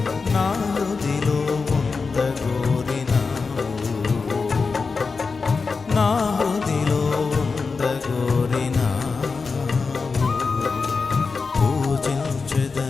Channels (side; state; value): right; quieter; 4.6 dB